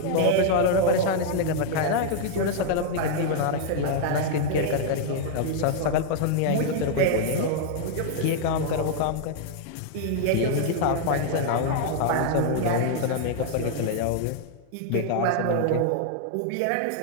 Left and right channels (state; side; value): different; both; correlation -0.01